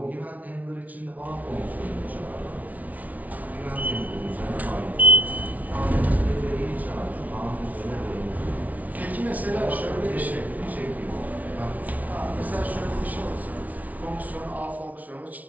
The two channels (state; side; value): late; left; 0.072 ms